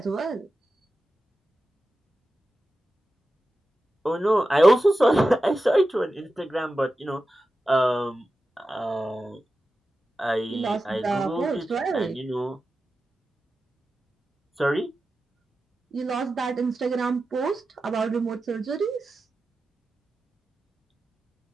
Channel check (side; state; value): both; normal; correlation 0.93